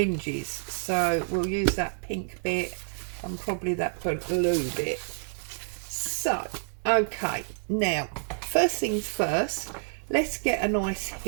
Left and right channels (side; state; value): left; silent; 59 dB below the other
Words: So we'll use that pink bit and probably that blue bit. So okay, now first things first, let's get a nice